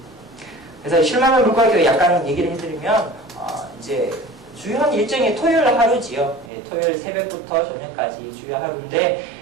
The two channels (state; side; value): drops out; left; at 6.5 s